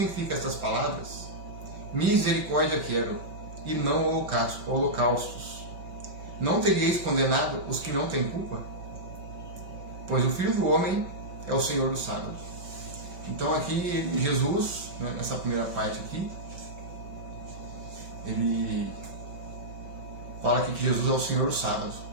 estas palavras, misericórdia quero, e não holocaustos, não teríeis condenado os que não têm culpa? Pois o Filho do Homem é o Senhor do sábado. Então aqui Jesus, né, nessa primeira parte aqui, ele fala aqui que Jesus é o Senhor do sábado.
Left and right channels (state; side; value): late; left; 5.2 ms